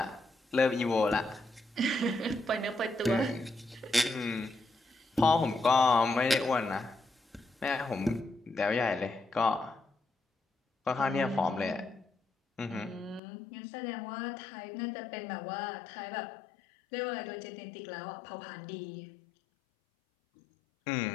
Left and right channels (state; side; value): drops out; right; at 13.2 s